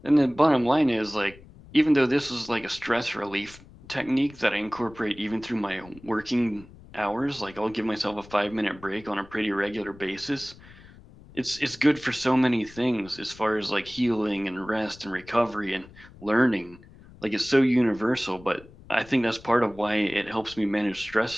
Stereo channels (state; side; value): noise; left; rumble, 21 dB below the sound